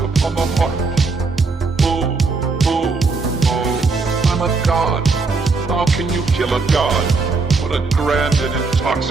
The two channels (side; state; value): left; quieter; 4.1 dB